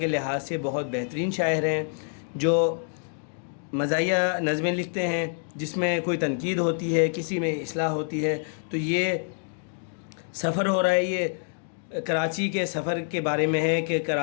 لحاظ سے بہت بہترین شاعر ہیں، جو مزاحیہ نظمیں لکھتے ہیں جس میں کوئی تنقید ہوتی ہے، کسی میں اصلاح ہوتی ہے۔ تو یہ سفر ہو رہا ہے، یہ کراچی کے سفر کے بارے میں ہے کہ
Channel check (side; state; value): right; silent; digital silence